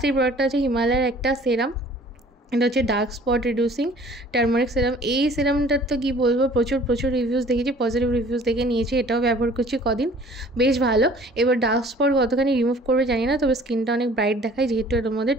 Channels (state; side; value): normal; both; correlation 0.52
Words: এই প্রোডাক্টটা হচ্ছে হিমালয়ের একটা সেরাম, এটা হচ্ছে dark spot reducing turmeric serum. এই সিরামটার তো কী বলবো, প্রচুর রিভিউজ দেখেছি, পজিটিভ রিভিউজ দেখে নিয়েছি, এটাও ব্যবহার করছি কদিন, বেশ ভালো। এবার ডার্ক স্পট কতখানি রিমুভ করবে জানি না, তবে স্কিনটা অনেক ব্রাইট দেখায়, যেহেতু এর মধ্যে